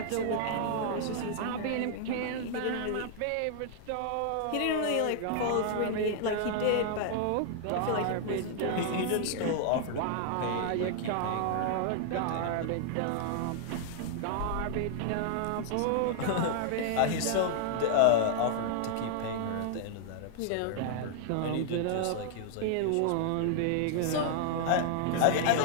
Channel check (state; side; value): different; both; correlation -0.01